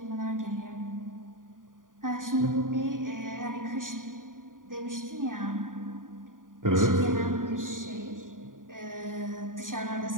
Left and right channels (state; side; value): late; left; 0.89 ms